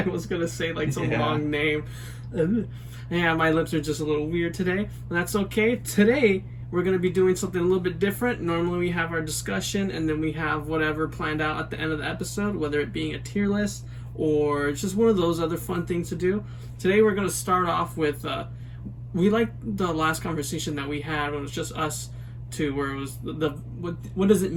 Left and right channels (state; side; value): identical; both; correlation 1.00